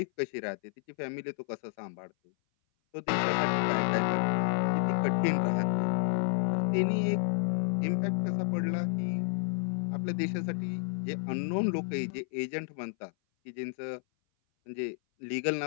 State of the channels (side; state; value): right; silent; 57 dB below the other